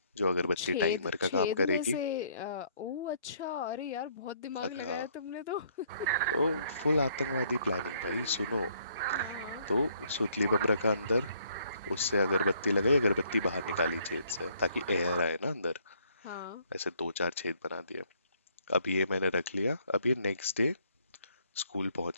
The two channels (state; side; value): inverted; both; correlation -0.65